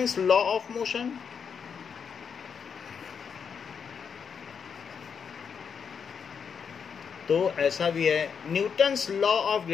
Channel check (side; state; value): right; quieter; 6.7 dB